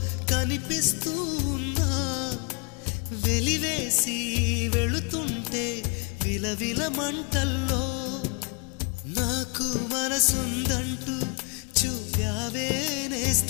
కనిపిస్తూ ఉన్నా వెలివేసి వెళుతుంటే విలవిల మంటల్లో నాకు మనసుందంటూ చూపావే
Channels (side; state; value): right; quieter; 34.9 dB